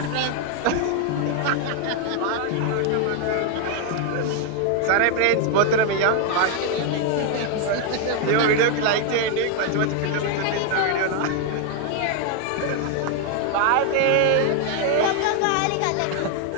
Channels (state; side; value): different; both; correlation 0.01